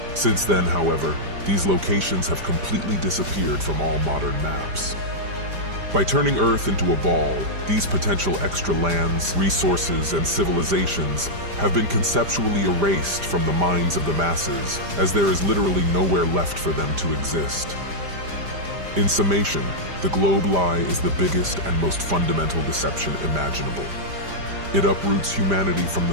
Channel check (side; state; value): left; late; 5.0 ms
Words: Since then, however, these locations have completely disappeared from all modern maps. By turning Earth into a ball, these potential extra lands, resources, and civilizations have been conceptually erased from the minds of the masses, as there is literally nowhere left for them to exist. In summation, the globe lie is the biggest and most fundamental deception imaginable. It uproots humanity from the